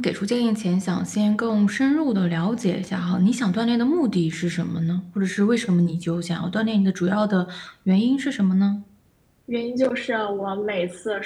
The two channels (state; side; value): identical; both; correlation 1.00